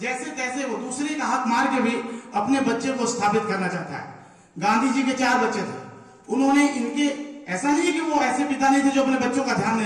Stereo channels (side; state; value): both; identical; correlation 1.00